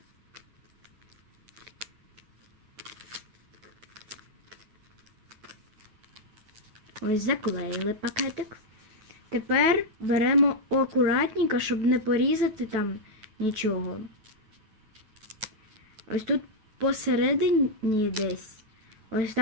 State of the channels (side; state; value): left; late; 9.3 ms